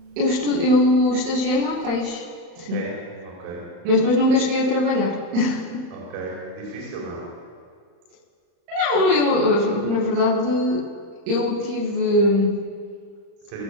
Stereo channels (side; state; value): left; late; 35 ms